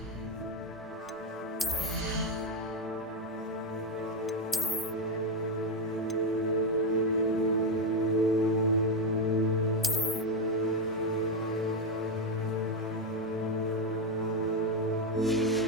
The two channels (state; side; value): normal; both; correlation 0.06